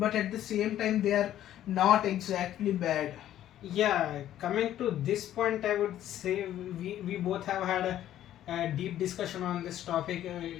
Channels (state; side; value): quieter; right; 12.1 dB